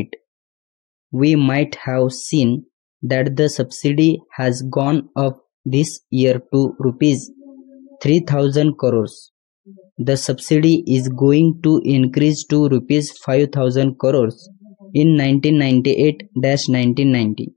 We might have seen that the subsidy has gone up this year to rupees 3,000 crores. The subsidy is going to increase to rupees 5,000 crores in 1998-1990.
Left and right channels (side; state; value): right; quieter; 22.3 dB